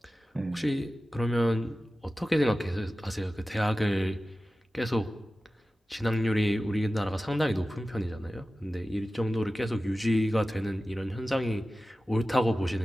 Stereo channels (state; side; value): normal; both; correlation 0.95